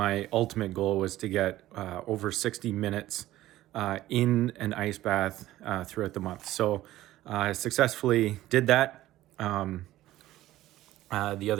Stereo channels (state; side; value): quieter; left; 15.2 dB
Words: ultimate goal was to get over 60 minutes in an ice bath throughout the month. So I successfully did that. The